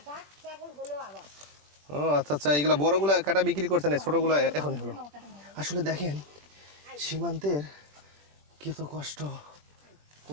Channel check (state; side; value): late; left; 21 ms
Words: ও আচ্ছা আচ্ছা, এগুলা বড়গুলা কাটা বিক্রি করছে না, ছোটগুলা এখনই হলো। আসলে দেখেন সীমান্তের কত কষ্ট,